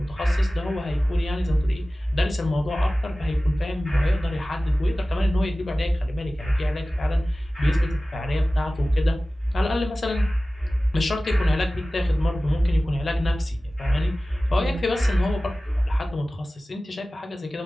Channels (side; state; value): both; normal; correlation 0.97